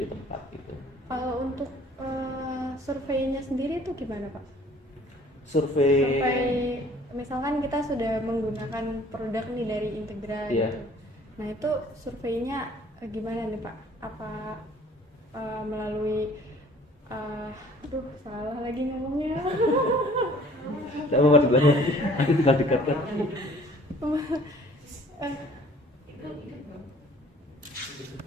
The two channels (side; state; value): both; normal; correlation 0.54